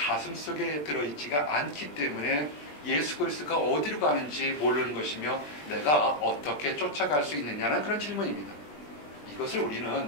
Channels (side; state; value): right; late; 20 ms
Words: 속에 들어있지가 않기 때문에 예수 그리스도가 어디로 가는지 모르는 것이며 내가 어떻게 쫓아갈 수 있느냐는 그런 질문입니다. 이것을 우리는